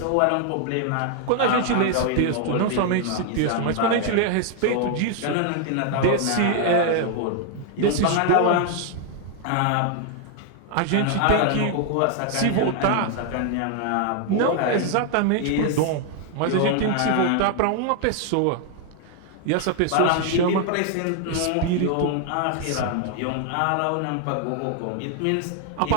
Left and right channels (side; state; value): both; different; correlation 0.00